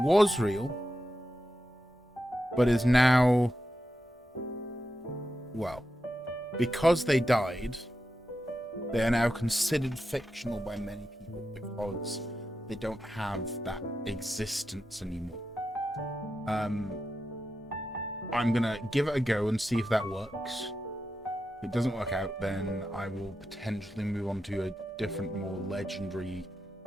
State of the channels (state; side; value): normal; both; correlation 0.89